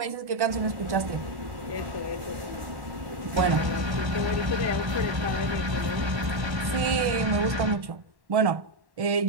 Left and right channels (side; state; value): left; late; 1.1 ms